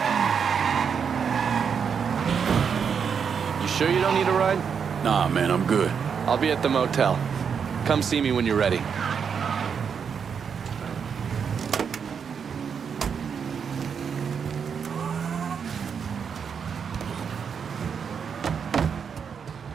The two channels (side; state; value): left; quieter; 6.8 dB